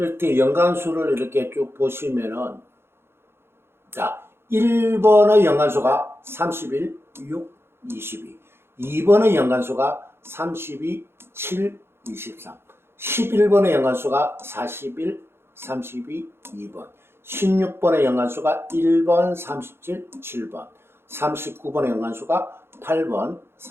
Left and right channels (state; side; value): late; left; 0.11 ms